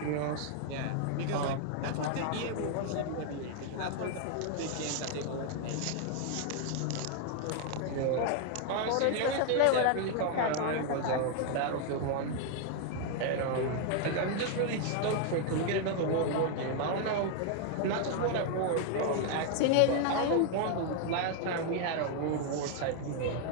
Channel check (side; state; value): both; different; correlation 0.00